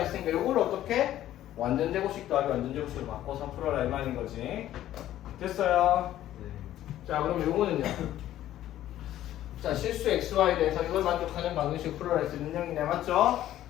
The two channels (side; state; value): right; quieter; 13.0 dB